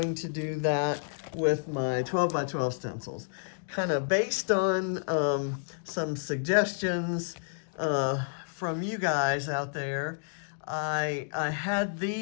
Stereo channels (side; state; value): right; silent; digital silence